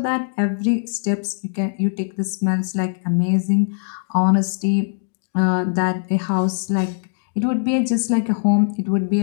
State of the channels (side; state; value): right; silent; digital silence